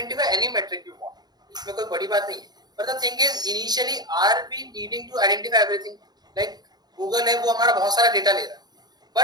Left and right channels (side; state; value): left; late; 0.20 ms